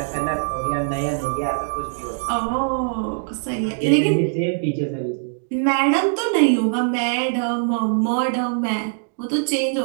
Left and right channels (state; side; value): silent; left; digital silence